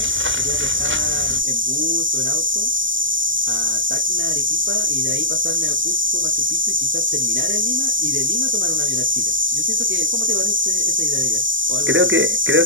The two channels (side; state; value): left; late; 0.56 ms